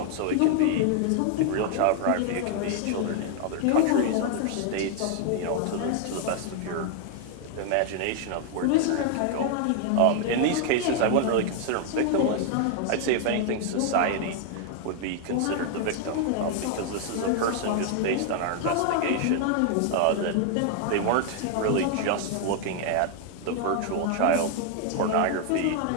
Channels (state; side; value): different; both; correlation 0.00